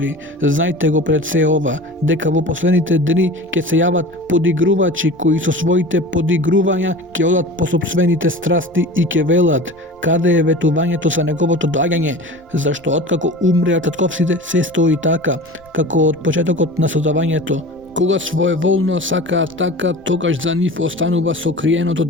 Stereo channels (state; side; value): noise; left; rumble, 30 dB below the sound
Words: Знајте го пред се ова, дека во последните дни ќе се јават подигрувачи кои со своите подигрувања ќе одат по сопствените страсти и ќе велат: каде е ветувањето за неговото доаѓање? Зашто откако умреа татковците се стои така, како од почетокот на создавањето. Кога своеволно сакаат така, тогаш за нив останува сокриеното